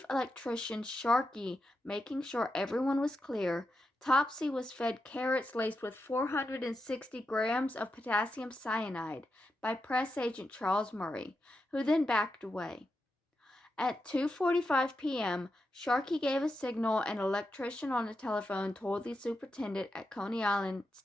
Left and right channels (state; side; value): normal; both; correlation 0.87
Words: Electrician Sharkey making sure everyone was clear, Topsy was fed carrots laced with 460 grams of potassium cyanide by press agent Charles Murray, who then backed away. At 2:45 p.m., Sharkey gave a signal and an electrician on the telephone told the superintendent at Coney Island